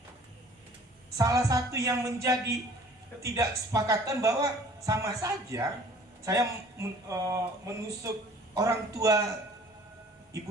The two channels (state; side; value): normal; both; correlation 0.51